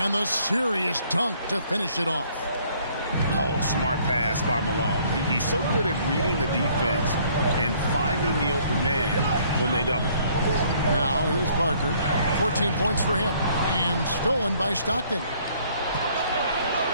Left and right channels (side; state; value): both; inverted; correlation -0.62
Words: the serious dunk to finish it off. Oh, smart pass by Malone. He's so good at reading the defense and finding the open man when they double. Now, here's Parker. 14 points for him. And stolen by Stockton.